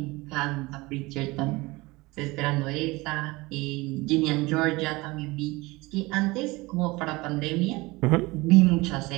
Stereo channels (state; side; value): quieter; left; 22.4 dB